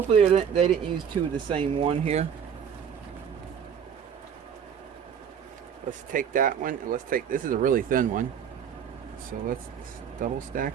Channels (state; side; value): quieter; left; 7.9 dB